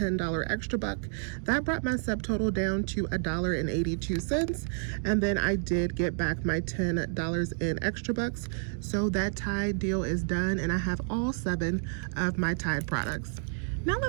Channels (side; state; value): left; silent; 57 dB below the other